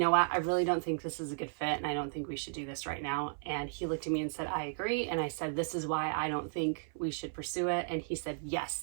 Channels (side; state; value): left; silent; 55 dB below the other